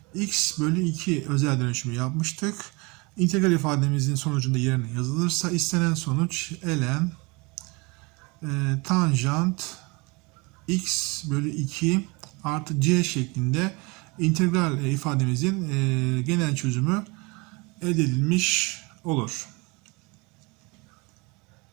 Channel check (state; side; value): quieter; left; 27.2 dB